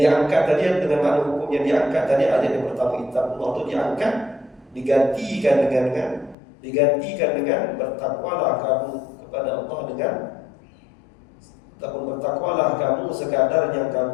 diangkat tadi dengan makna hukum yang diangkat tadi, ayat yang pertama ittaqullah itu diangkat, digantikan dengan bertakwalah kamu kepada Allah dengan ataupun bertakwalah kamu sekadar yang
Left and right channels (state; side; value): drops out; right; at 6.4 s